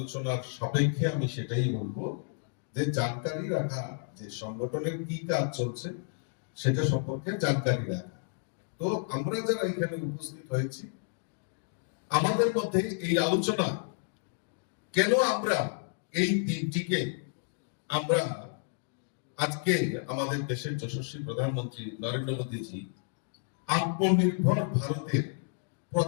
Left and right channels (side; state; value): right; silent; digital silence